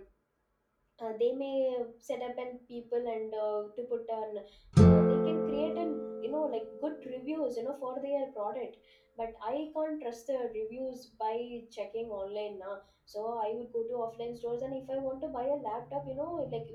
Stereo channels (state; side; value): identical; both; correlation 1.00